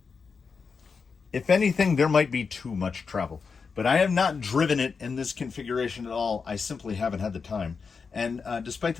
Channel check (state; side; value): quieter; right; 5.3 dB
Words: if anything, there might be too much travel. But I have not driven it in this configuration at all. I simply haven't had the time. And despite